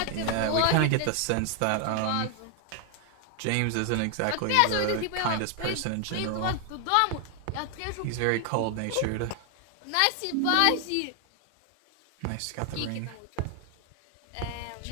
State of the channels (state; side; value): different; both; correlation 0.00